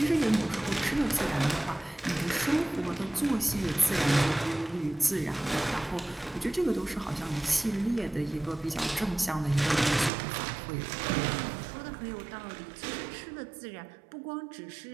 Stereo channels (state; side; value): drops out; left; at 10.1 s